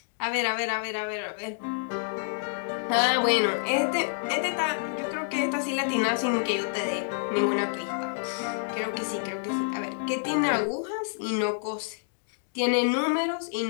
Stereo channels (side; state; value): right; silent; digital silence